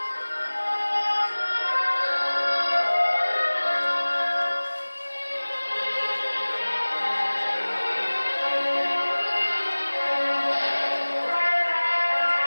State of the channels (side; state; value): both; inverted; correlation -1.00